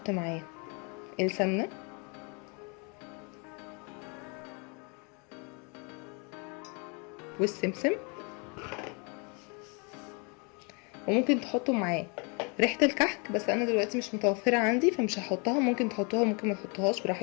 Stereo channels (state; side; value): quieter; right; 33.4 dB